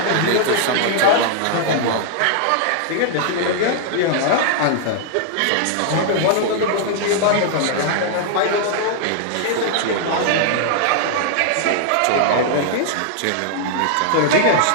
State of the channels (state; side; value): different; both; correlation -0.01